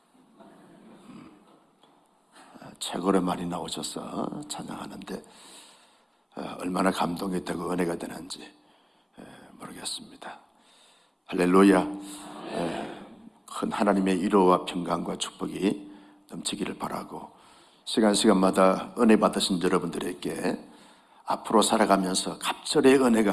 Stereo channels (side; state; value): both; identical; correlation 1.00